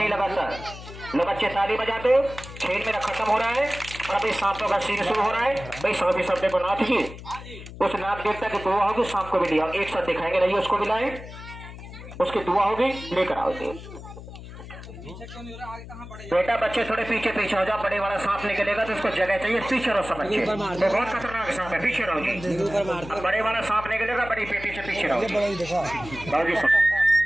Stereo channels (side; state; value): left; noise; hum, 14 dB below the sound